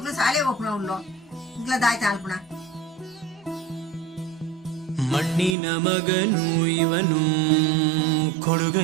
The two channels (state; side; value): drops out; left; at 5.6 s